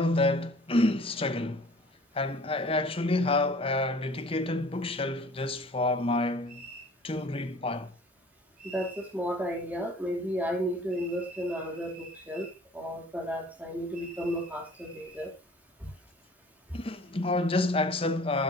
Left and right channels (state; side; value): normal; both; correlation 0.49